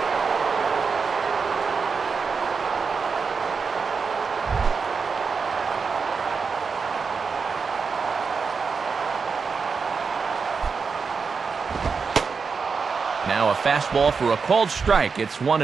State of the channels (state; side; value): quieter; left; 5.3 dB